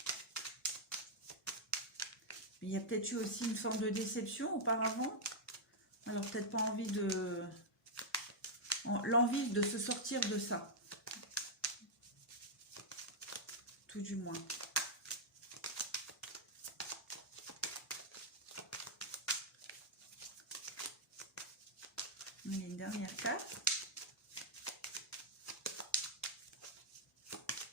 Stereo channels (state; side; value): normal; both; correlation -0.06